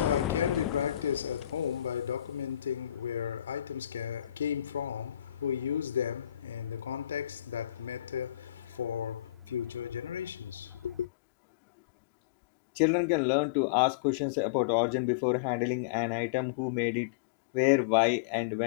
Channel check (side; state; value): right; drops out; at 11.1 s